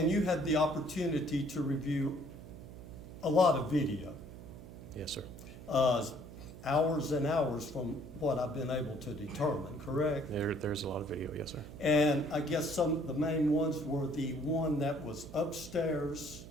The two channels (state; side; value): noise; right; hum, 14 dB below the sound